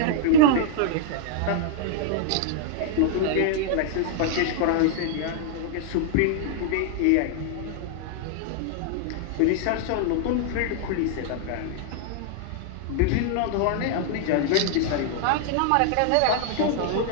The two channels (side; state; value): both; different; correlation -0.01